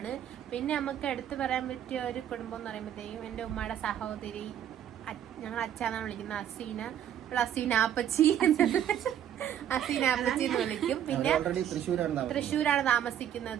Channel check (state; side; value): quieter; left; 10.3 dB